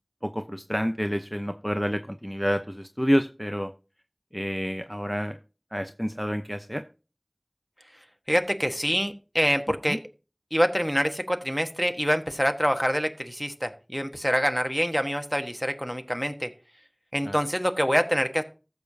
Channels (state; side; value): identical; both; correlation 1.00